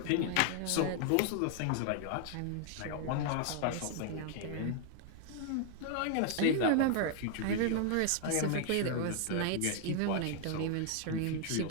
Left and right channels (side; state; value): both; different; correlation 0.00